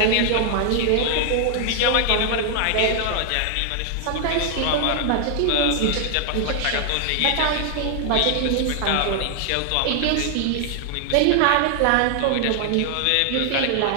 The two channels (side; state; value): both; different; correlation 0.00